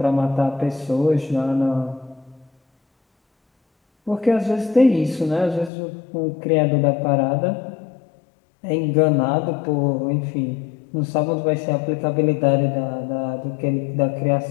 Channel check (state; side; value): drops out; right; at 5.7 s